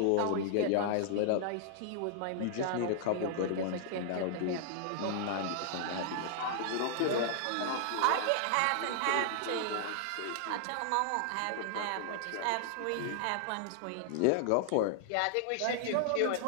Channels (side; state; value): both; different; correlation -0.01